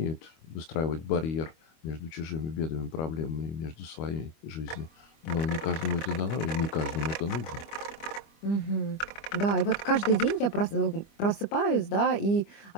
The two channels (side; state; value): right; late; 25 ms